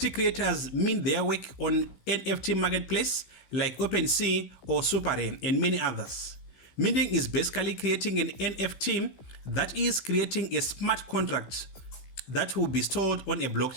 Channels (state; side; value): late; right; 15 ms